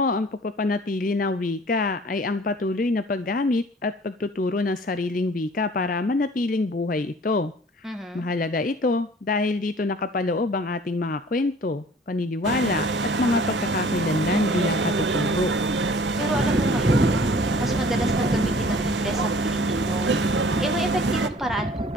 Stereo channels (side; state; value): both; normal; correlation 0.50